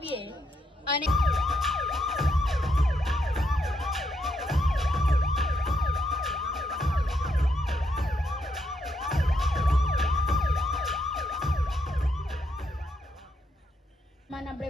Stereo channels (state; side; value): normal; both; correlation 0.78